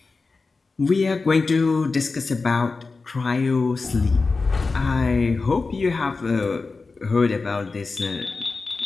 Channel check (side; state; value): right; quieter; 4.1 dB